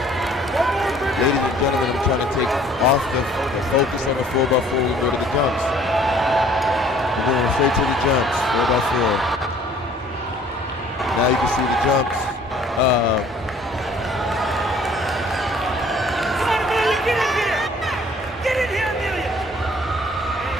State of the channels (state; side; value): normal; both; correlation 0.55